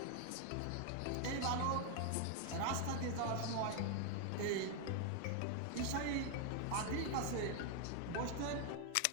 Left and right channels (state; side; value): different; both; correlation 0.00